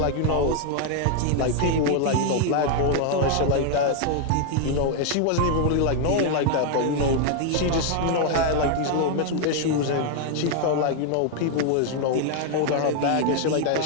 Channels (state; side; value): different; both; correlation 0.00